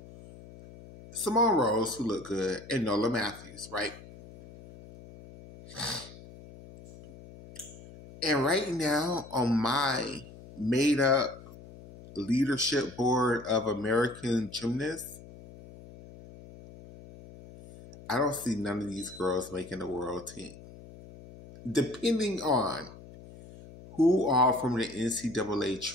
Simone Rose, who looked good, and Nola Matthews, right? And right now, on my made-up leadership board of American gymnasts, I don't see none of these girls making the world team. Depending on Who all from the NCAA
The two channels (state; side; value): noise; left; hum, 18 dB below the sound